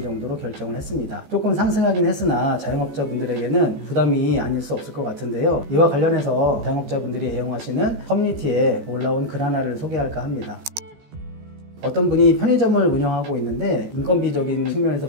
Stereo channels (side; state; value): left; late; 14 ms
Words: 정도로 결정을 했습니다. 조금 상승하긴 했으나 자영업자분들에게는 부담이 아닐 수 없을 것 같은데요. 이와 관련해서 자영업자분들이 애용하시는 커뮤니티에 올라온 글 하나를 소개할까 합니다. 어떤 분이 편의점을 운영하고 있는데 인건비적인 측면에서